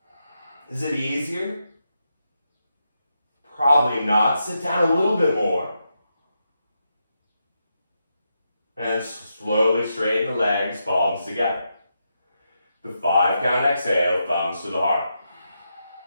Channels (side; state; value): both; inverted; correlation -0.84